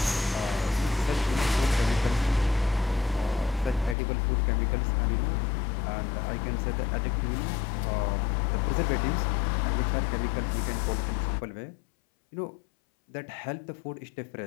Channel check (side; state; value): right; drops out; at 4.0 s